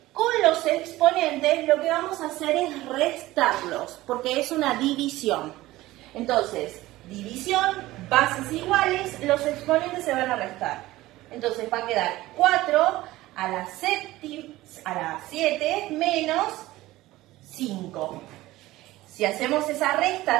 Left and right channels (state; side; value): quieter; left; 17.4 dB